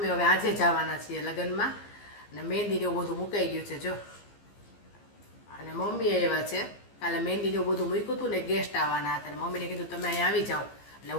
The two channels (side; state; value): right; late; 15 ms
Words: હવે આજે જવાના છીએ લગ્નમાં. અને મહેંદીને એવું બધું મુકાઈ ગયું છે જો. અને મમ્મી આવ્યા છે. કાલે મહેંદીને એવું બધું મૂક્યું હતું ને, ગેસ્ટ આવવાના હતા. મમ્મીને કીધું તમે અહીંયા આવી જાઓ. એટલે